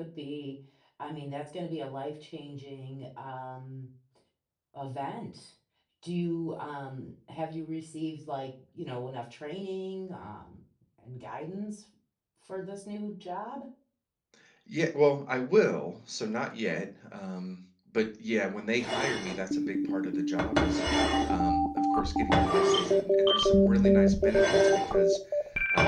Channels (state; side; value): identical; both; correlation 1.00